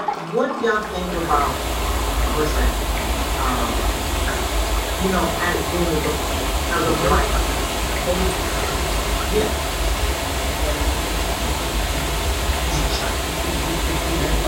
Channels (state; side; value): identical; both; correlation 1.00